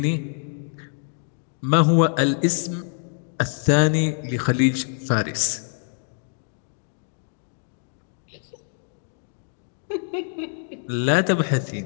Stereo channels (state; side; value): silent; right; digital silence